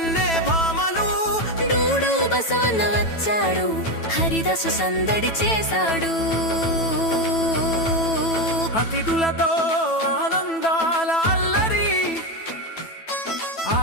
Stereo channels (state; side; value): late; right; 9.1 ms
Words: భామలు. డూడు బసవన్న వచ్చాడు హరిదాసు సందడి చేశాడు. అతిథులతో ఆనందాల అల్లరి